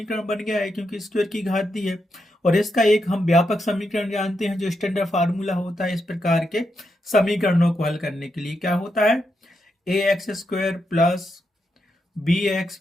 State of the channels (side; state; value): both; normal; correlation 0.84